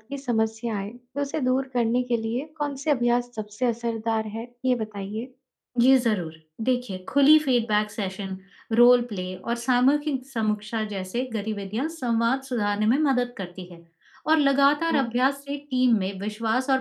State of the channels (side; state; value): both; identical; correlation 1.00